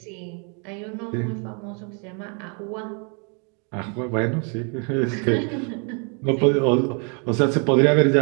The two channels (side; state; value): left; quieter; 37.7 dB